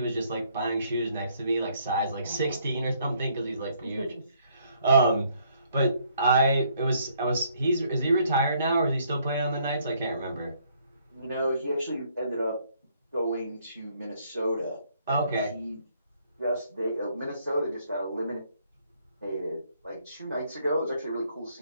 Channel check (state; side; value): inverted; both; correlation -0.67